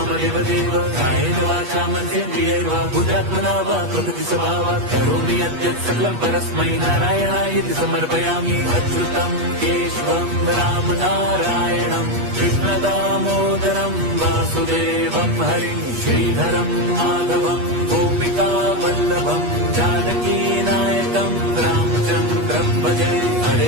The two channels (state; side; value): late; left; 8.3 ms